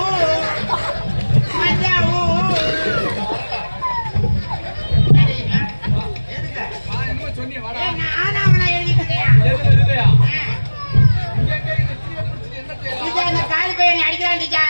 மச்சான் ஊ. எதுக்கு? என்ன சொன்னீங்க வாடா. நானா அவனா எழுதிட்டு இருக்கேன். இல்லையா இங்க எங்க இந்த டீச்சர் பிடிச்சி என்ன செய்யலாம்? டீச்சர் இந்த காலி பையனை அடிக்கிறான்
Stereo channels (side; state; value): both; inverted; correlation -1.00